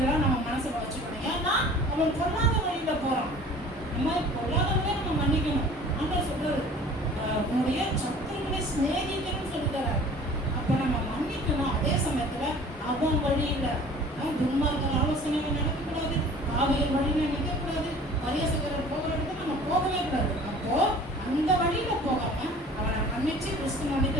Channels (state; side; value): normal; both; correlation 0.47